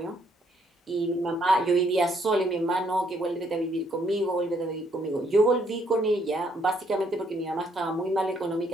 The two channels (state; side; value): normal; both; correlation 0.70